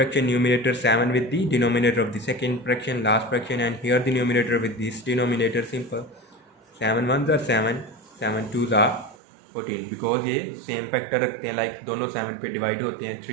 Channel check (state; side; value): drops out; left; at 9.2 s